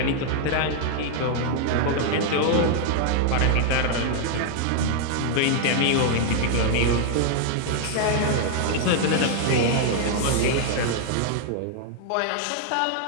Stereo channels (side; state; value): both; different; correlation 0.00